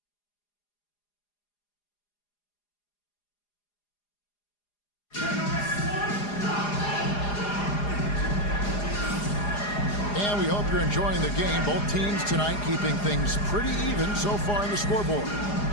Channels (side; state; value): right; late; 4.9 ms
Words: And we hope you're enjoying the game. Both teams tonight keeping things pretty even so far in the scoreboard.